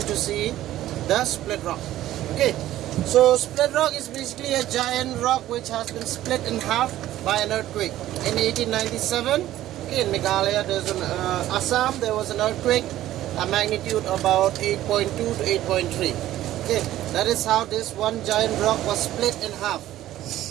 see the split rock. Okay, so split rock is basically a giant rock which has been split in half by an earthquake in 1897. Okay, in Meghalaya, there's an Assam, there was an earthquake, a magnitude about 8.2 to 8.3. Okay, that is how this one giant rock was split in half.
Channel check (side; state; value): left; quieter; 13.9 dB